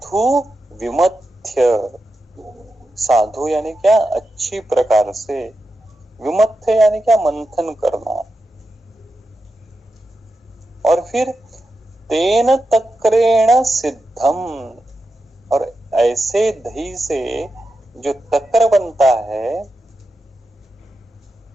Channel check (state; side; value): normal; both; correlation 0.89